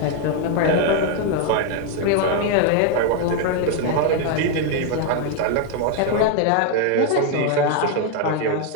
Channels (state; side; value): different; both; correlation 0.01